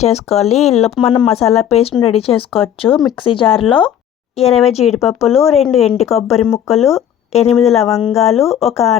చేసుకోవాలి. ఈలోపు మనం మసాలా పేస్ట్ని రెడీ చేసుకోవచ్చు. మిక్సీ జార్లో 20 జీడిపప్పులు, 2 ఎండు కొబ్బరి ముక్కలు, 8 లవంగాలు, 1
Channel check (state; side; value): quieter; right; 9.9 dB